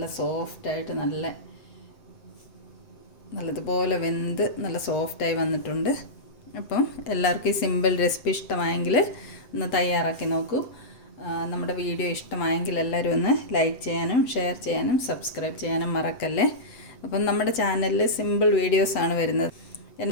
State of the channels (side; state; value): right; late; 7.8 ms